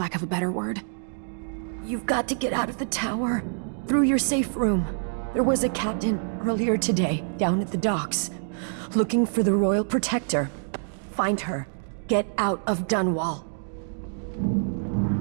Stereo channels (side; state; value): left; silent; digital silence